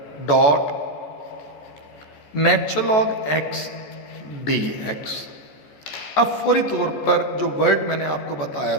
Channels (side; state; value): right; late; 14 ms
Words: dot natural log x d x. अब फौरी तौर पर जो वर्ड मैंने आपको बताया